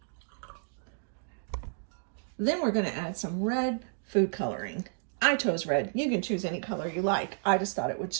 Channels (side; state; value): left; silent; digital silence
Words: Then we're going to add some red food coloring. I chose red. You can choose any color you like. I just thought it would